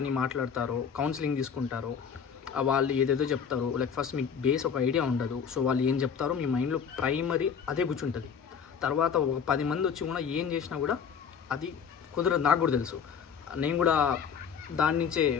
మాట్లాడతారో, కౌన్సిలింగ్ తీసుకుంటారో, వాళ్ళు ఏదేదో చెప్తారో, లైక్ ఫస్ట్ మీకు బేస్ ఒక ఐడియా ఉండదు. సో వాళ్ళు ఏం చెప్తారో మీ మైండ్లో ప్రైమరీ అదే కూర్చుంటుంది. తర్వాత ఒక 10 మంది వచ్చి కూడా ఏం చేసినా కూడా అది కుదరదు. నాకు కూడా తెలుసు, నేను కూడా దాని నుంచే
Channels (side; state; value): right; quieter; 7.0 dB